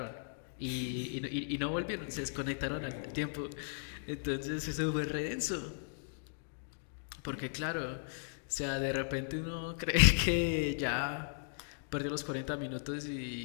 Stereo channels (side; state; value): right; silent; digital silence